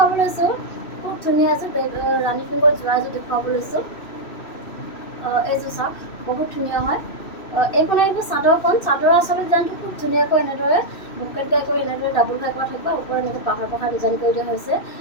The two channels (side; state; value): right; late; 2.6 ms